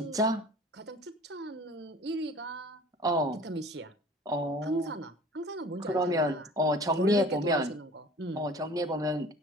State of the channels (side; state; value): both; normal; correlation 0.45